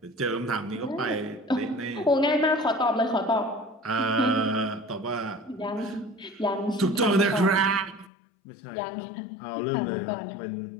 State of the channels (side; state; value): right; drops out; at 8.1 s